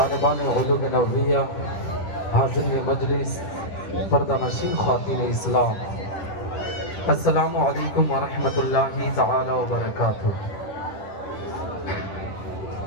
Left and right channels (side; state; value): right; late; 10 ms